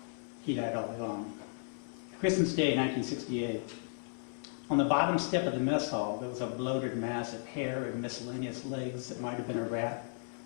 He died all along. Christmas Day, 1968. On the bottom step of the mess hall, there was a bloated mass of hair and miscellaneous legs that might have been a rat,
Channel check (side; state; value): right; silent; 55 dB below the other